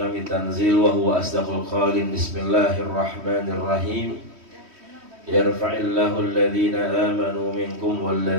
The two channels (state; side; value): late; left; 3.1 ms